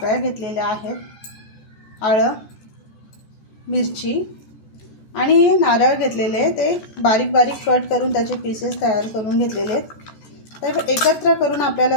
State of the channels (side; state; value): right; late; 14 ms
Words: घेतलेल्या आहेत, आलं, मिरची आणि नारळ घेतलेले, ते बारीक बारीक कट करून त्याचे पीसेस तयार करून घेतलेले आहेत। तर एकत्र करून